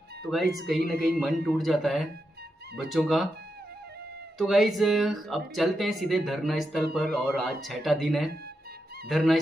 तो गाइज कहीं ना कहीं मन टूट जाता है बच्चों का। तो गाइज अब चलते हैं सीधे धरना स्थल पर। और आज 6वां दिन है धरना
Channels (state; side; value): normal; both; correlation 0.86